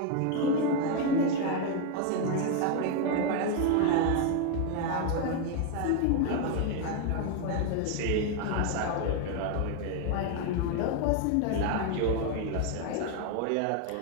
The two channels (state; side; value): different; both; correlation 0.01